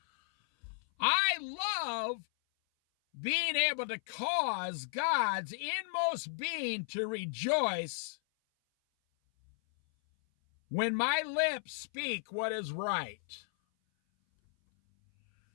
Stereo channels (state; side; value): silent; right; 55 dB below the other